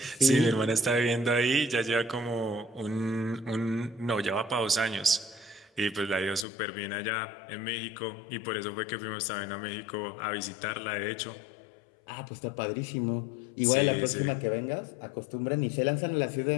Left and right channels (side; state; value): right; drops out; at 6.5 s